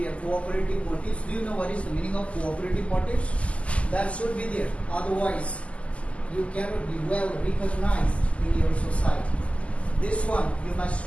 Cooperative motives. Do you know what is the meaning of cooperative motives? That should be there. Otherwise, you cannot be well recognized in your society. This one you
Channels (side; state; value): right; late; 0.061 ms